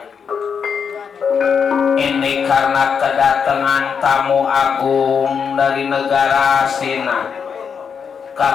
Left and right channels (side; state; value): right; quieter; 6.6 dB